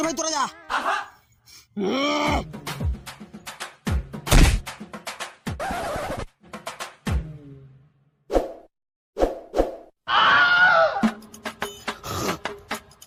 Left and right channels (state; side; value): identical; both; correlation 1.00